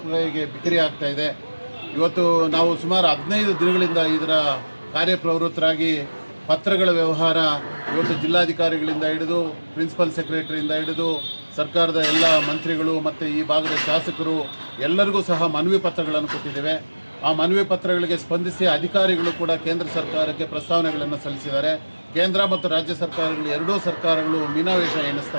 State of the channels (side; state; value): both; inverted; correlation -1.00